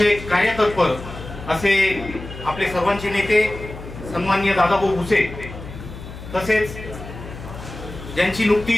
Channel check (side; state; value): left; noise; hum, 13 dB below the sound